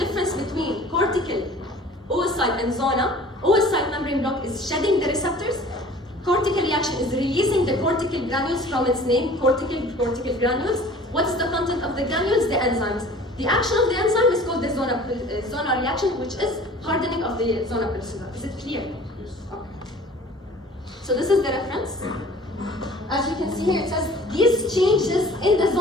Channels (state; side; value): normal; both; correlation 0.47